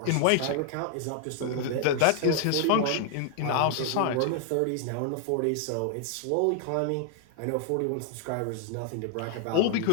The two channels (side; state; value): both; different; correlation 0.00